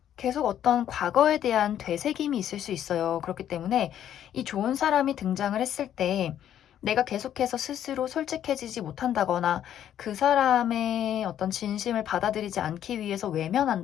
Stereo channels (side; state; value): right; quieter; 10.6 dB